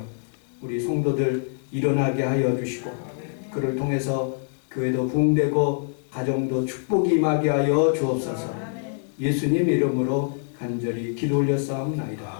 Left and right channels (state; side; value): silent; right; digital silence